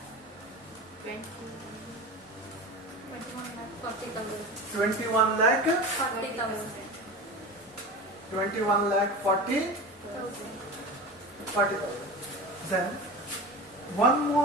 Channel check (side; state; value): both; normal; correlation 0.30